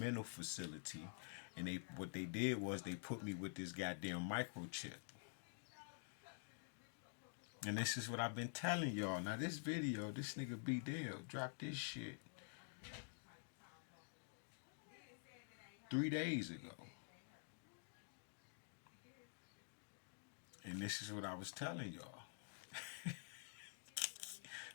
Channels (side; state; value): right; silent; digital silence